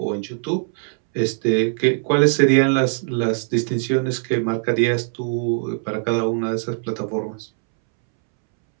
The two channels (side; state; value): left; silent; 65 dB below the other